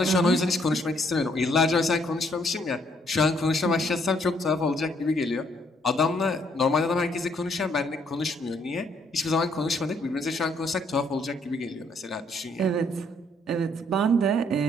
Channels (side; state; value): both; normal; correlation 0.69